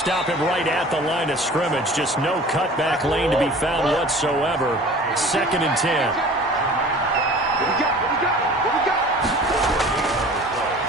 him right at the line of scrimmage. Just no cutback lane to be found whatsoever. 2nd and 10.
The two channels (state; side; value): normal; both; correlation 0.44